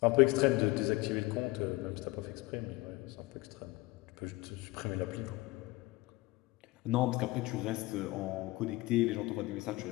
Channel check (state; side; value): quieter; right; 21.1 dB